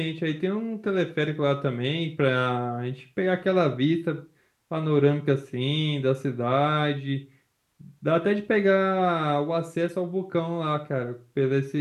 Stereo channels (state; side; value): identical; both; correlation 1.00